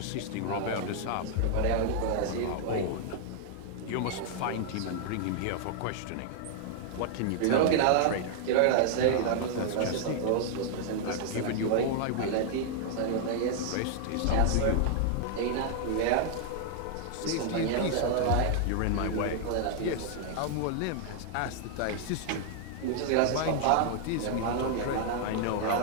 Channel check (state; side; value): different; both; correlation 0.00